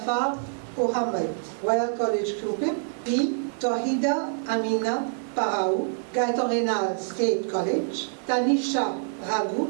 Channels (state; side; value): silent; left; digital silence